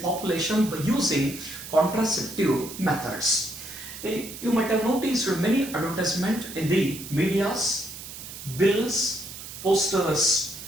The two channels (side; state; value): right; noise; hiss, 12 dB below the sound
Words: by using contraceptive methods. You might have noticed many advertisements in the medias, bills, posters,